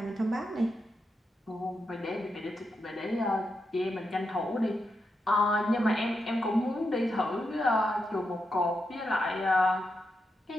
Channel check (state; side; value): normal; both; correlation 0.85